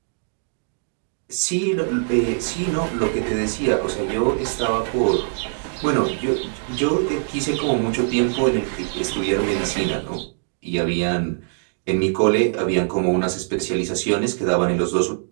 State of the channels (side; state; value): left; silent; digital silence